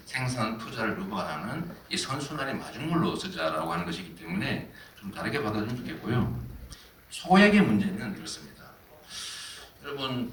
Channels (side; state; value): both; identical; correlation 1.00